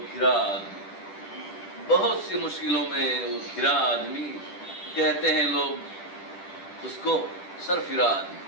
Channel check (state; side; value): late; right; 10 ms